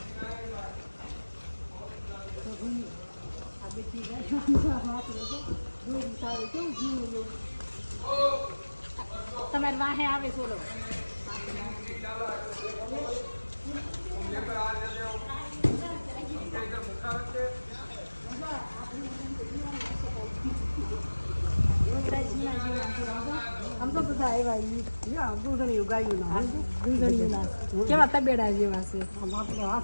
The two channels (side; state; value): both; inverted; correlation -1.00